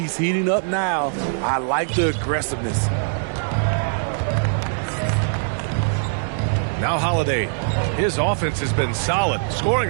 heating up now. I like the aggressiveness. Now Holiday. His offense has been solid, scoring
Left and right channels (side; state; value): left; silent; 62 dB below the other